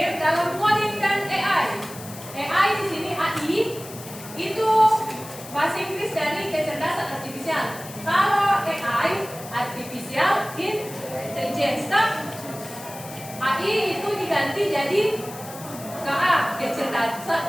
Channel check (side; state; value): left; noise; hiss, 15 dB below the sound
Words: dalam coding dan AI. AI di sini AI itu bahasa Inggris dari kecerdasan artifisial. Kalau AI artificial intelligence, AI itu diganti jadi KA,